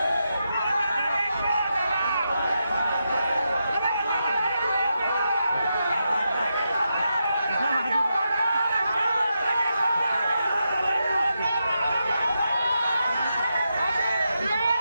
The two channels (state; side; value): inverted; both; correlation -0.86